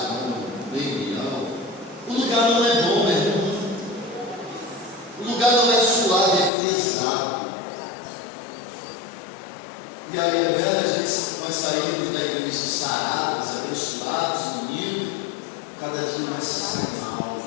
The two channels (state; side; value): drops out; right; at 6.5 s